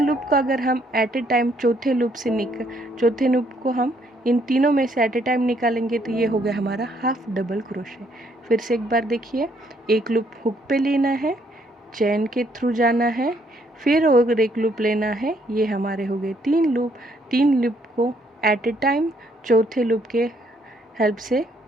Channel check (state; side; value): normal; both; correlation 0.69